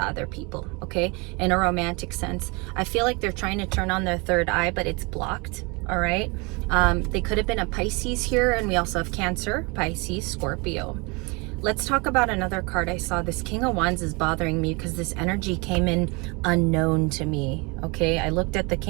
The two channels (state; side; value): quieter; left; 28.5 dB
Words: other people, okay, in a romantic sense. I feel like they're trying to turn on their third eye, but it's blocked. All right, they could have been a Pisces here, and we also have Cancer, Pisces, Scorpio. Let's talk about another card I saw. This King of Wands is bothering me because this energy came in unknown to me. Okay, I looked at the